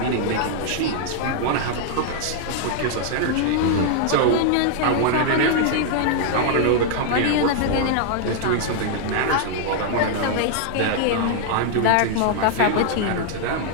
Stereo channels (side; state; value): both; different; correlation -0.01